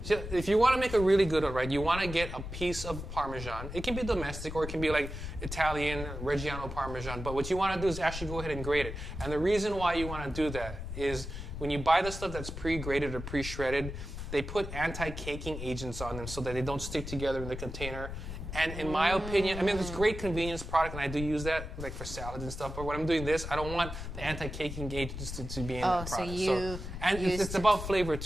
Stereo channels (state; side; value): noise; left; rumble, 8 dB below the sound